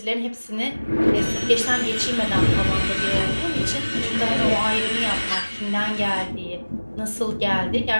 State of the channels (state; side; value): inverted; both; correlation -1.00